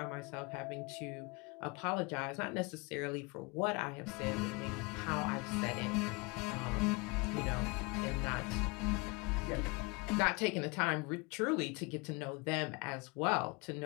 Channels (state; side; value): quieter; right; 27.6 dB